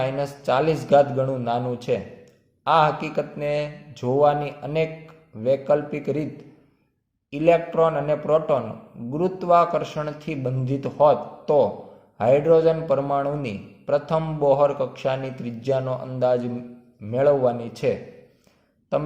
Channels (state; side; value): identical; both; correlation 1.00